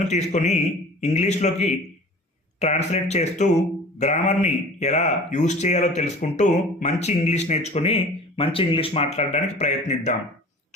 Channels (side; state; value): both; normal; correlation 0.42